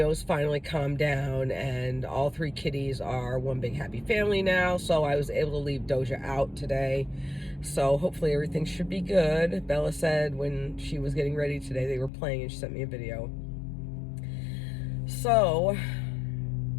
finally calmed down, and all 3 kitties are one big happy family now, so I was able to leave Doja out today. So hopefully everything should be good. Bella said when she was getting ready today, they were playing, and she sent me a video. So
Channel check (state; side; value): drops out; right; at 12.1 s